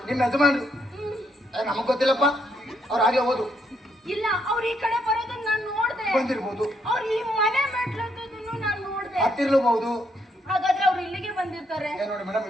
ನಿಮ್ಮ ಯಜಮಾನ್ರು? ನಮಗ್ ಗೊತ್ತಿಲ್ಲಪ್ಪ, ಅವ್ರು ಆಗ್ಲೇ ಹೋದ್ರು. ಇಲ್ಲ, ಅವ್ರು ಈ ಕಡೆ ಬರೋದನ್ನ ನಾನು ನೋಡ್ದೆ. ಬಂದಿರ್ಬೋದು. ಅವ್ರು ಈ ಮನೆ ಮೆಟ್ಲನ್ನು ನಾನು ನೋಡ್ದೆ. ಹತ್ತಿರ್ಲಬಹುದು. ಹಾಗಾದ್ರೆ ಅವ್ರು ಇಲ್ಲಿಗೆ ಬಂದಿರ್ತಾರೆ. ನೋಡಿ ಮೇಡಮ್,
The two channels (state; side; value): normal; both; correlation 0.75